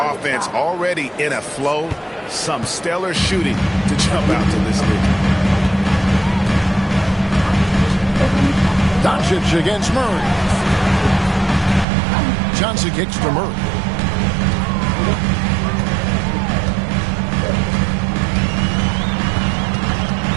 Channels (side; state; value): left; drops out; at 11.9 s